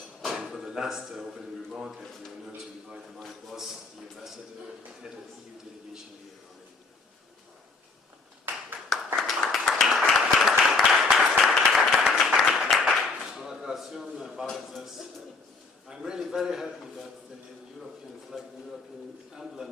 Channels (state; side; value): quieter; right; 4.0 dB